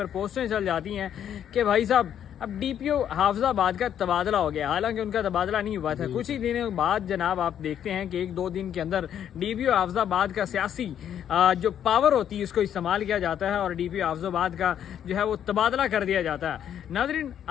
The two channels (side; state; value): right; quieter; 9.7 dB